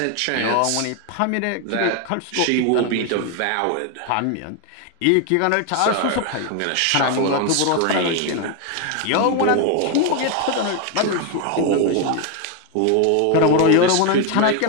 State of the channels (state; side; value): different; both; correlation 0.01